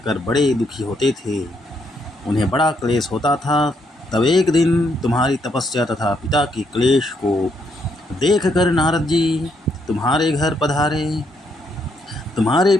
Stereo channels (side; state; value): both; normal; correlation 0.75